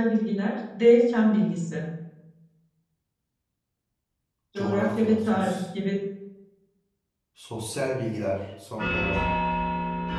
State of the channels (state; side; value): identical; both; correlation 1.00